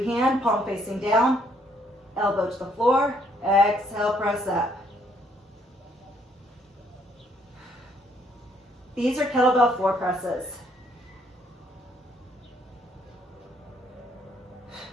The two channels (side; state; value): both; normal; correlation 0.68